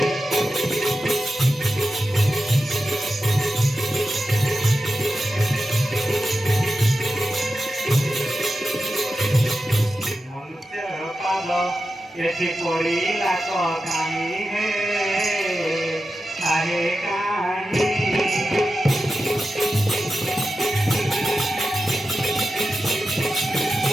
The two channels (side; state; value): both; normal; correlation 0.91